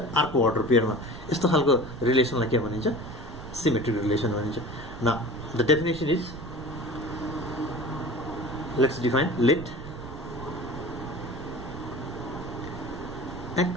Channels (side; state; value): right; noise; rumble, 12 dB below the sound